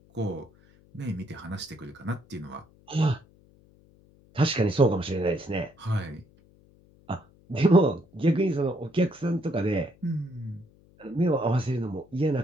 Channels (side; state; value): left; noise; hum, 29 dB below the sound